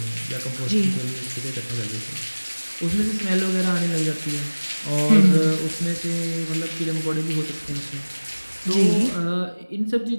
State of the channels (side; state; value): both; inverted; correlation -1.00